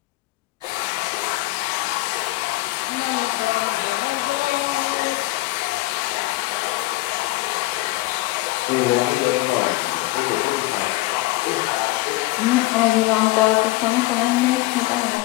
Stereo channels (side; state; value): right; quieter; 20.0 dB